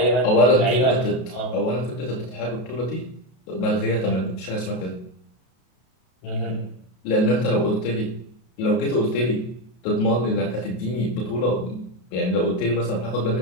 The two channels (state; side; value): late; right; 32 ms